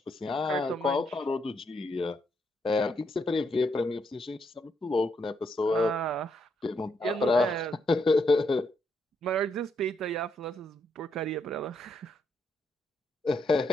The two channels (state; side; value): normal; both; correlation 0.77